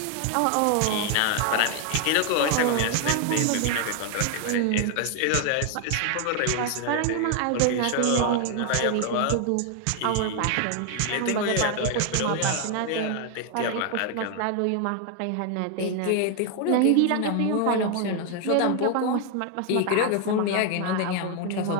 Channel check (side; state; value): both; different; correlation 0.00